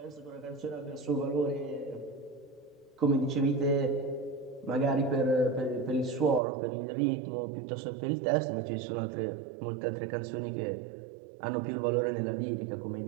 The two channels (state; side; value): drops out; left; at 6.4 s